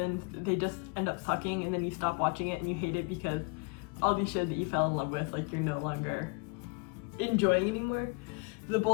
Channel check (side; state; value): right; quieter; 31.9 dB